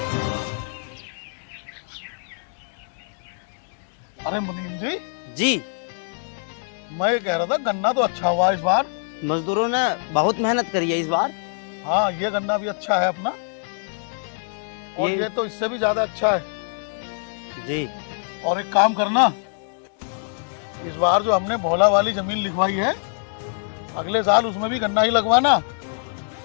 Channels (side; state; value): right; silent; digital silence